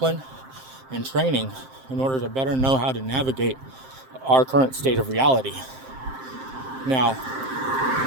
and training in order to better know how to navigate our current state of reality. Now,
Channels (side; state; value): left; late; 7.6 ms